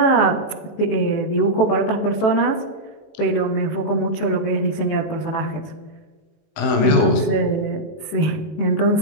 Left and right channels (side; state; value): right; late; 19 ms